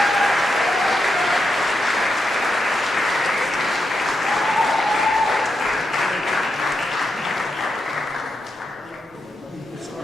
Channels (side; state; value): both; normal; correlation 0.84